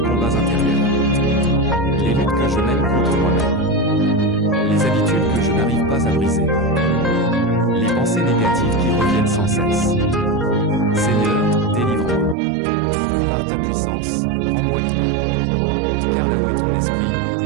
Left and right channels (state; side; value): drops out; left; at 12.4 s